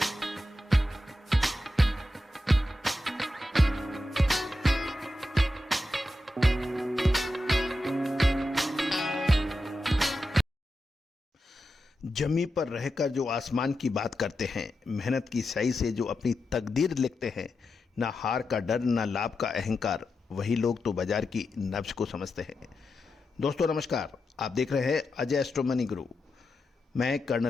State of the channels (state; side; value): normal; both; correlation 0.88